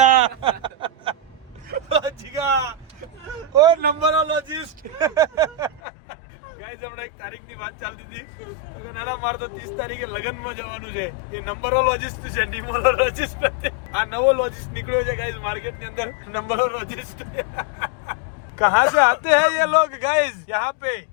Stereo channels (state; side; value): drops out; right; at 5.8 s